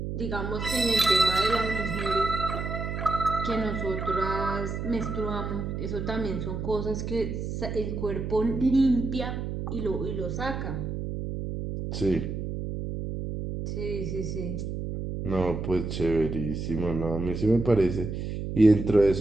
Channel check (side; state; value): right; noise; hum, 4 dB below the sound